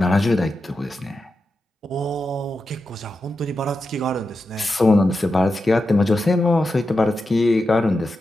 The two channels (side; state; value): both; normal; correlation 0.89